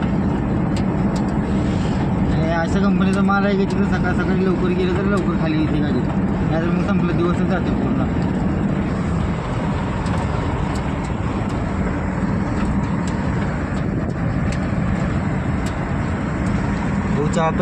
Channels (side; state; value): both; identical; correlation 1.00